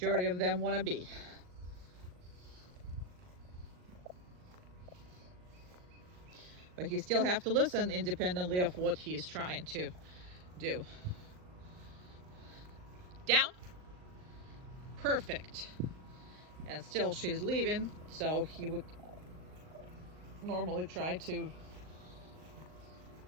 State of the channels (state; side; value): late; left; 39 ms